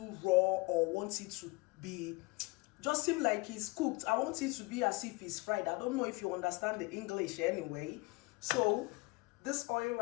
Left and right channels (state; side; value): quieter; right; 25.1 dB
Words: raw or want it to be just seem like it's cooked. I want it to be as if it's fried. I don't know if you understand the English anyway. So this oil